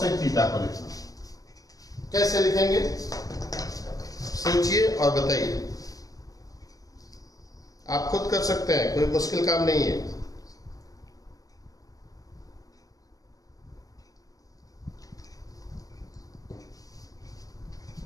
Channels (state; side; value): late; right; 0.17 ms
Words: थीटा को लिखना हो। कैसे लिखेंगे सोचिए और बताइए, आप खुद कर सकते हैं, कोई मुश्किल काम नहीं है।